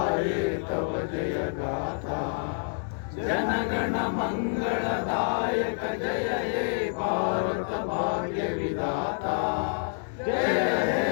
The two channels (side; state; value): right; silent; 59 dB below the other